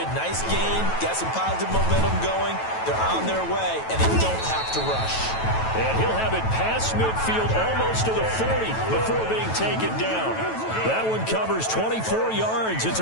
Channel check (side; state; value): right; late; 9.1 ms